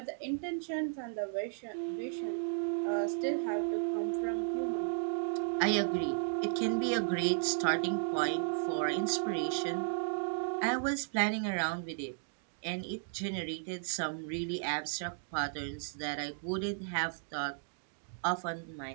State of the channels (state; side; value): silent; left; digital silence